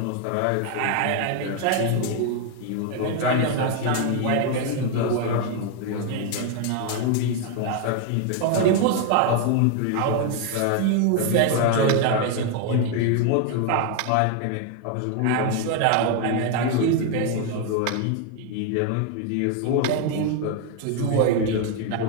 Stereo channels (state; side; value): different; both; correlation 0.01